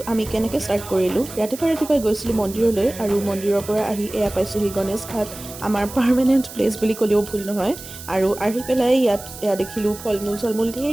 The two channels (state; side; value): noise; right; hiss, 14 dB below the sound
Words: আমি কেনেকৈ ষ্টাৰ্ট কৰিলোঁ। ৰাতিপুৱাই গৈছিলোঁ মন্দিৰলৈ আৰু মন্দিৰৰ পৰা আহি এয়া পাইছোঁহি গণেশ ঘাট, আমাৰ পাৰ্মানেণ্ট প্লেচ বুলি ক'লেও ভুল নহয়। আৰু আহি পেলাই এয়া দেখিলোঁ ফল মূল ধেৰ